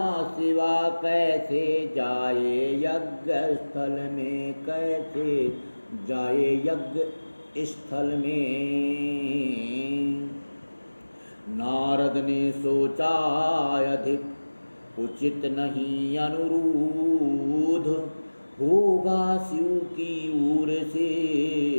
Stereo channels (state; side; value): inverted; both; correlation -1.00